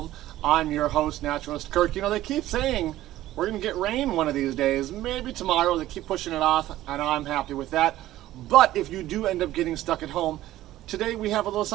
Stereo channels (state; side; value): quieter; left; 14.7 dB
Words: I'm your host, Naturalist Kirk. You know, they keep saying we're going to get rain one of these days, maybe tomorrow. They keep pushing it off, and I'm happy with that. But if you do end up getting stuck at home, today we have a little